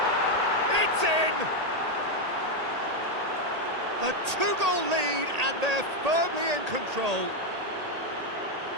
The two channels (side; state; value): left; late; 1.8 ms